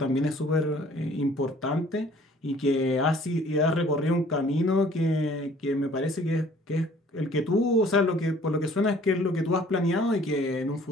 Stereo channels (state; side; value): normal; both; correlation 0.55